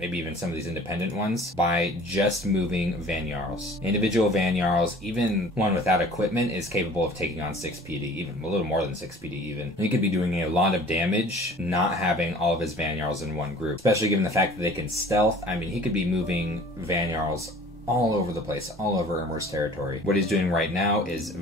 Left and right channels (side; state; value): both; normal; correlation 0.47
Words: even some of these independent ones, by just moving Van Jarls. Individual Van Jarls, even one without equipment, is capable of taking on 6 PD, even a little more than 6 PD even. He could be doing a lot of damage not having all of his Van Jarls in one group, especially given the fact that they can stealth. I mean, he could be moving Van Jarls all over the place, all over Ermor's territory. What he's doing right now is